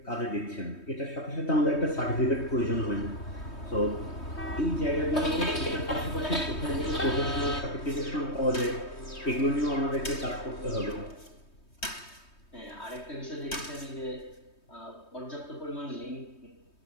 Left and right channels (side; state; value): right; late; 3.2 ms